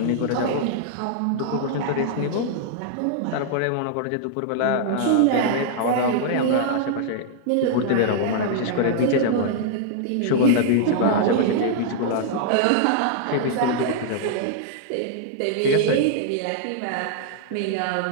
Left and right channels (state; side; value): different; both; correlation -0.01